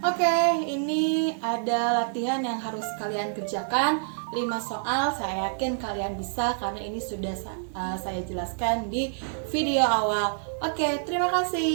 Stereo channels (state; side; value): silent; left; digital silence